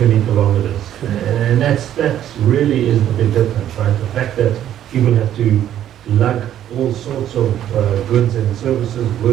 kilometers. And that really is the big difference, right? The fact that people have to lug all sorts of goods and services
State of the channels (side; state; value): left; quieter; 11.2 dB